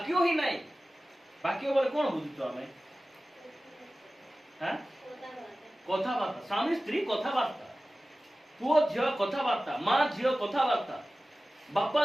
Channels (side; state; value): both; normal; correlation 0.96